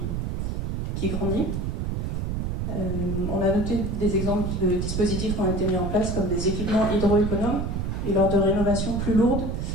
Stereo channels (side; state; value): right; noise; rumble, 2 dB below the sound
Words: qui grandit. On a noté des exemples de dispositifs qui ont été mis en place, comme des équipements hydroéconomes et lors de rénovations plus lourdes,